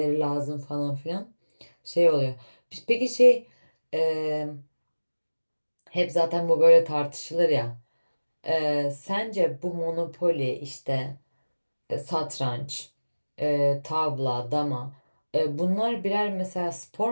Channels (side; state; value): both; inverted; correlation -1.00